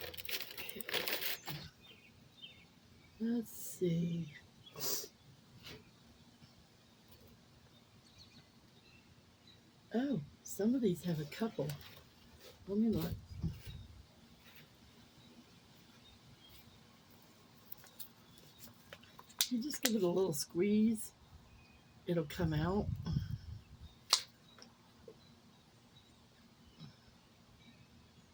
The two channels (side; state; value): both; identical; correlation 1.00